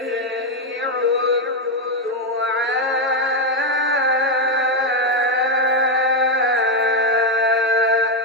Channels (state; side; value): normal; both; correlation 0.04